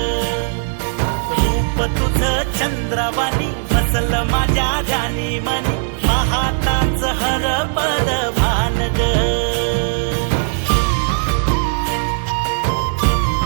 रूप तुझं चंद्रवाणी बसल माझ्या ध्यानी मनी पाहताच हरपल भान ग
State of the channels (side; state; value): left; silent; digital silence